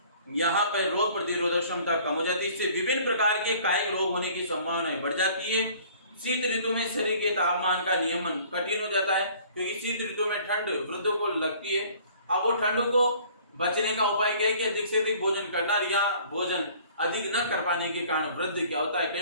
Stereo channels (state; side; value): inverted; both; correlation -0.53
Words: यहाँ पर रोग प्रतिरोधक क्षमता कम हो जाती है। इससे विभिन्न प्रकार के कायिक रोग होने की संभावना बढ़ जाती है। शीत ऋतु में शरीर के तापमान का नियमन कठिन हो जाता है, क्योंकि शीत ऋतु में ठंड वृद्धों को लगती है। अब वो ठंडों को बचने का उपाय क्या है कि अधिक से अधिक भोजन करना, या भोजन अधिक न कर पाने के कारण वृद्ध क्या होता है,